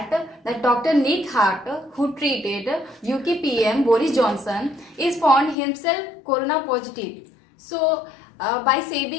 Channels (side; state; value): right; drops out; at 5.6 s